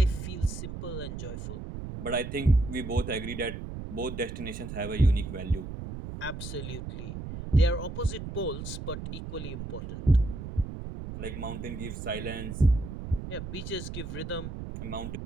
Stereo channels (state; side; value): noise; right; rumble, 7 dB below the sound